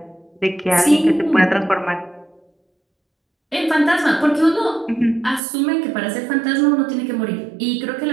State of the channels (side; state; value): left; drops out; at 5.4 s